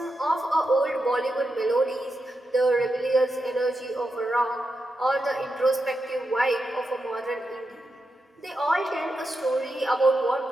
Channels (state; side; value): normal; both; correlation 0.87